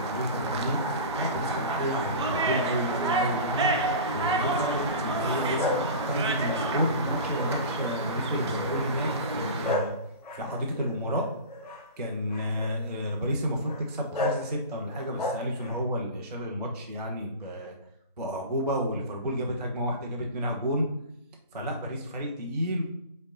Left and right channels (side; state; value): both; inverted; correlation -0.32